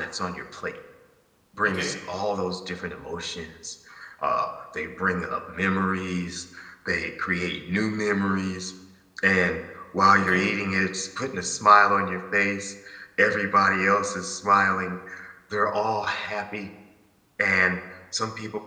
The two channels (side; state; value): both; identical; correlation 1.00